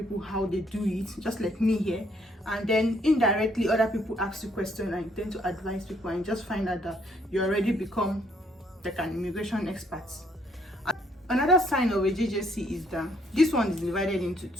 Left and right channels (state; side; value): normal; both; correlation 0.68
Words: how they do it, just like me here, and then indirectly other people ask you questions and you tend to advise people, and just find out that you already become like an immigration expert. Another sign of a JJC is that this one is divided into